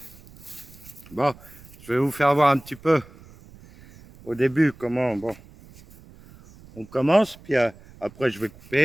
Bon, je vais vous faire voir un petit peu au début comment on commence, puis après je vais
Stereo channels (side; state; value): right; noise; rumble, 22 dB below the sound